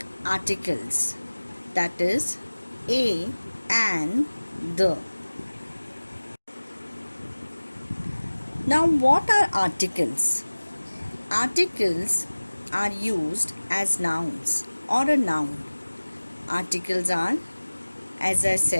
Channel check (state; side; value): inverted; both; correlation -1.00